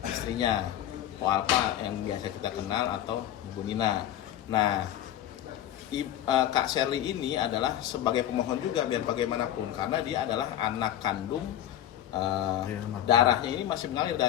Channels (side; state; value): right; quieter; 11.7 dB